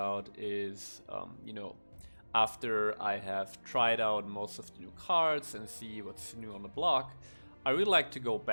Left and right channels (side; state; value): both; inverted; correlation -1.00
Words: is, after I have tried out most of the new cards and see what's new on the block, I really like to go